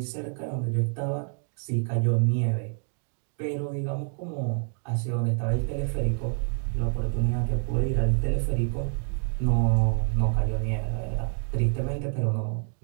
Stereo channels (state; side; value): silent; left; 60 dB below the other